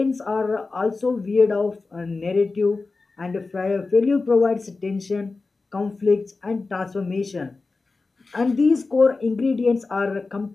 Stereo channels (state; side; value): quieter; right; 3.8 dB